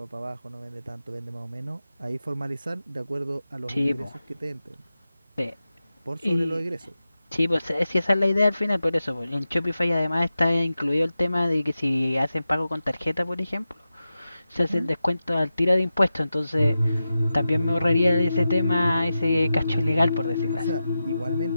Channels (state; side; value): inverted; both; correlation -0.92